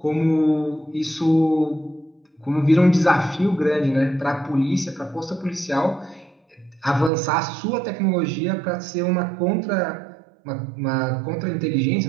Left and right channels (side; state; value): left; drops out; at 7.1 s